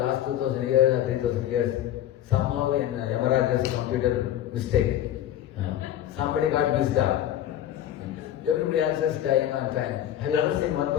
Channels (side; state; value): right; quieter; 11.9 dB